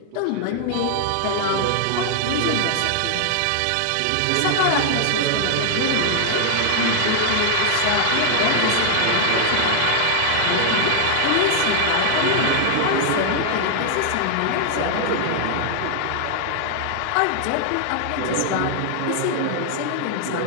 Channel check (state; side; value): different; both; correlation 0.00